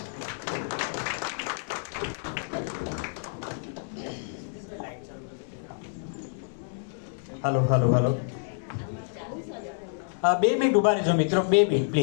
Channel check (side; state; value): right; silent; 58 dB below the other